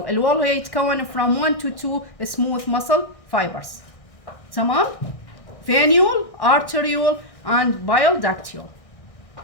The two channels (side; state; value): right; late; 1.6 ms